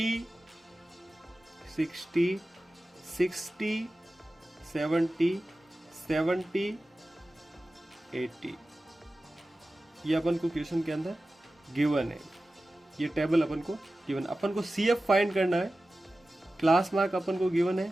60, 60, 70, 70, 80, ये अपन को क्वेश्चन के अंदर गिवन है। ये टेबल अपन को गिवन, अपन को CF फाइंड करना है। क्लास मार्क अपन को गिवन है,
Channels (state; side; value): normal; both; correlation 0.95